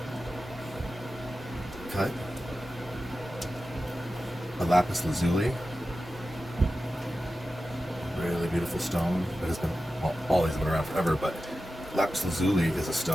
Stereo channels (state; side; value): normal; both; correlation 0.93